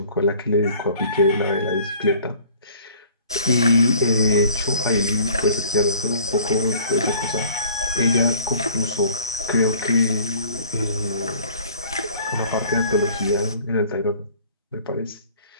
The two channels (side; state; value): both; inverted; correlation -0.51